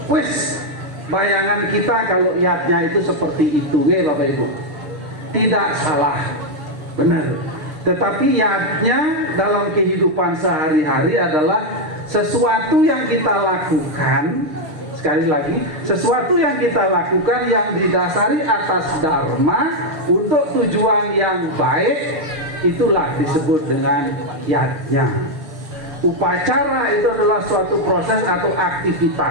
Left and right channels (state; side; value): late; left; 6.5 ms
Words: Wis, bayangan kita kalau yatnya itu seperti itu, ya Bapak Ibu. Tidak salah, benar. Tetapi yatnya dalam kehidupan sehari-hari adalah sesuatu yang kita lakukan. Sekali lagi, sesuatu yang kita lakukan yang didasari atas dharma untuk tujuan yang baik, itulah disebut dengan yatnya. Upacara itu adalah suatu proses atau